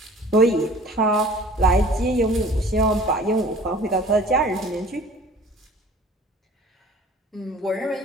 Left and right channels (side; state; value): both; normal; correlation 0.47